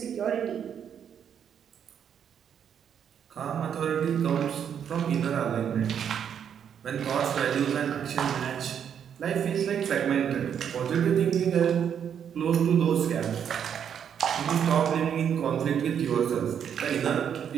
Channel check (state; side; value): quieter; left; 8.4 dB